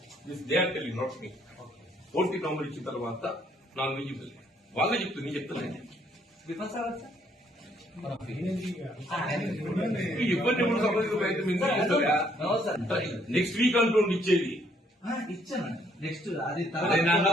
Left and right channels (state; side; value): normal; both; correlation 0.67